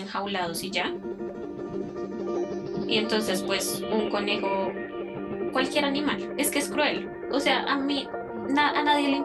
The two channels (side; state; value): both; identical; correlation 1.00